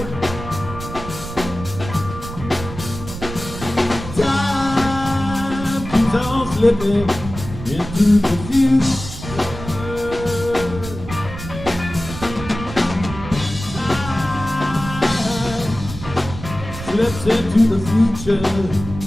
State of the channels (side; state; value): right; noise; rumble, 11 dB below the sound